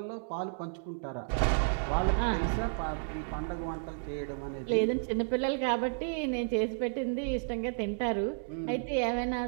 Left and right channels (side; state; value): left; silent; digital silence